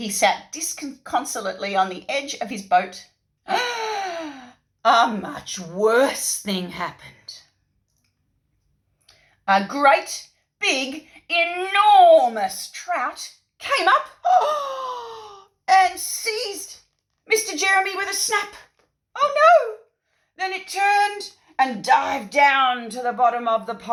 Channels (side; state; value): both; identical; correlation 1.00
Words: sat disconsolately on the edge of his boat. A much worse thing happened. A great, big, enormous trout came up and seized Mr. Jeremy with a snap. Oh no! Then it turned and dived down to the bottom of the